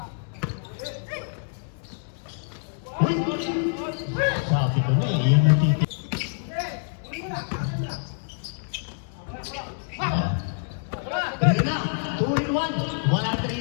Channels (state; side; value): silent; right; 61 dB below the other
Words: Sabi ko na, yun yung titi. Tignan na, 2-in-1. Wala